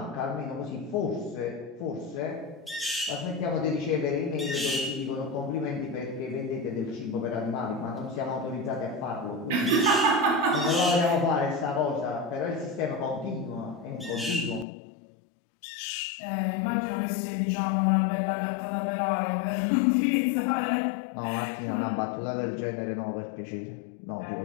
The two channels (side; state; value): right; drops out; at 14.7 s